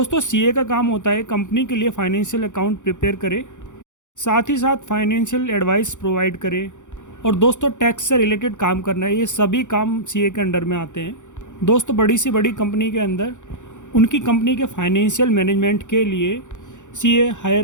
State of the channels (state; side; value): late; right; 0.85 ms